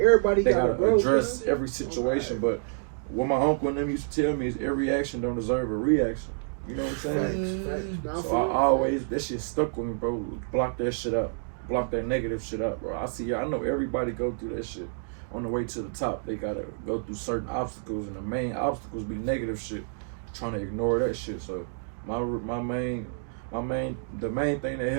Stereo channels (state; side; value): silent; left; digital silence